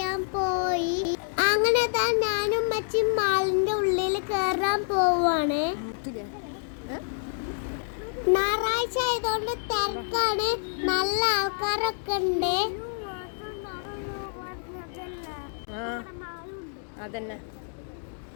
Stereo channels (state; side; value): silent; right; digital silence